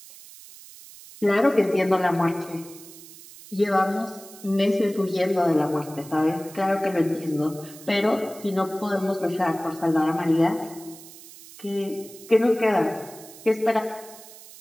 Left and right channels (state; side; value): noise; right; hiss, 18 dB below the sound